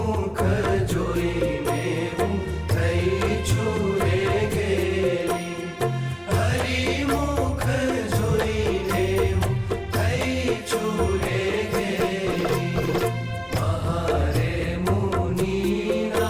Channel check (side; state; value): both; identical; correlation 1.00